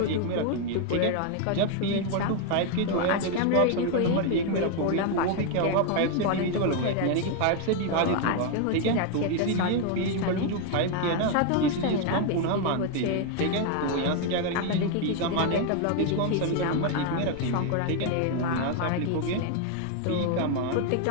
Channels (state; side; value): different; both; correlation 0.01